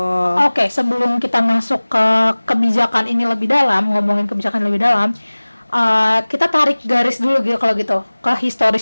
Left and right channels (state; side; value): inverted; both; correlation -1.00